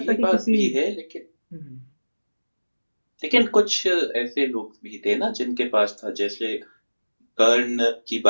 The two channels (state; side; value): inverted; both; correlation -1.00